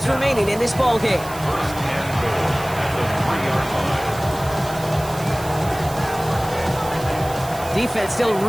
remaining in this ball game. Defense still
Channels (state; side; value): noise; right; hiss, 15 dB below the sound